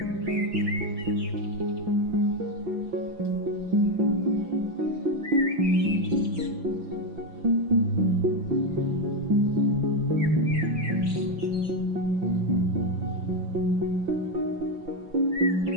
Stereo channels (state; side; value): late; left; 5.9 ms